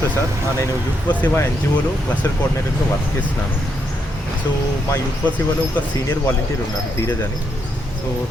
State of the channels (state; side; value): normal; both; correlation 0.79